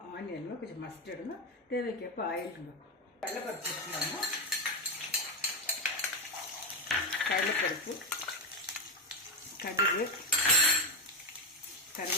ஆனியனுங்க, கொஞ்சம் மஸ்டர்டுங்க, தேவைக்கேற்ப ஆயிலுங்க. கடலைப்பருப்பு வச்சுக்கலாங்க. கடலைப்பருப்பு, கடுகு,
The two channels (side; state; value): both; normal; correlation 0.10